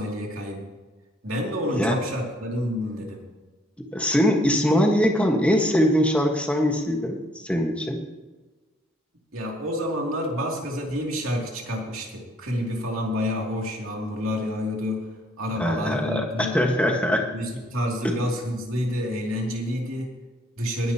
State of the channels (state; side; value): normal; both; correlation 0.65